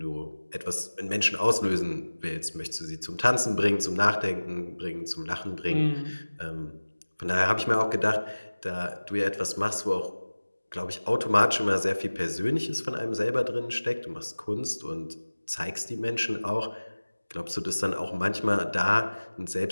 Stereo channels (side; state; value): both; inverted; correlation -1.00